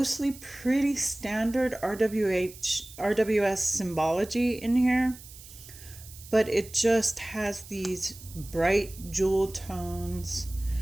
pretty standard RWS symbology in here, but it just has these bright jewel tones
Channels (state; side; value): noise; right; hiss, 18 dB below the sound